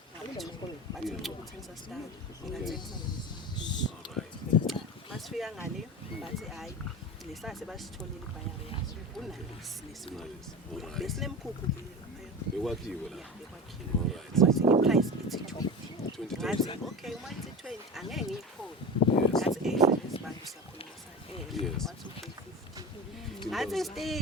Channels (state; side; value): normal; both; correlation 0.29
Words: bathi ukuthengisa stand ngingathengisa alright masifika ngale bathi hayi lesase basitholile ibhayari yazo kunalesi besinemkhukhu bekwakhiwe la alright wathi iprice ithi 20 okay uma ithi 20 angeke ngiyikhona ngathi lesibantu siyakhuluma sana wathi okay 50 ngathi